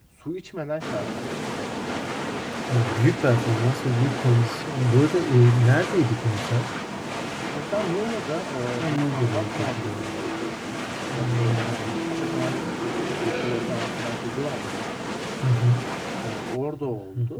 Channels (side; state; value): both; identical; correlation 1.00